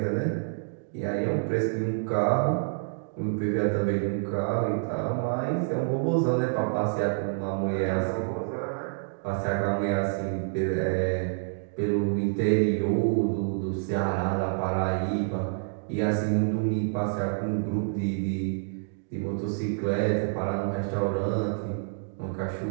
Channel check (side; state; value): left; silent; digital silence